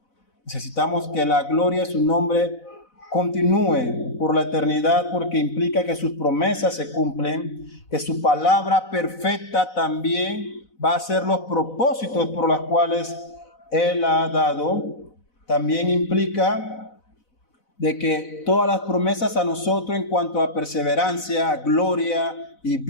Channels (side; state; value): right; late; 4.0 ms